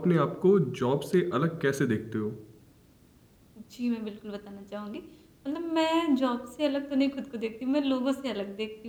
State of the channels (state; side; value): identical; both; correlation 1.00